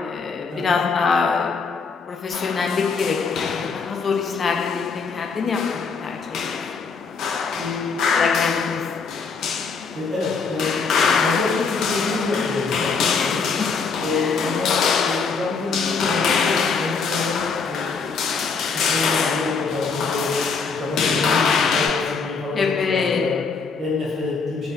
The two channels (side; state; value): right; quieter; 5.0 dB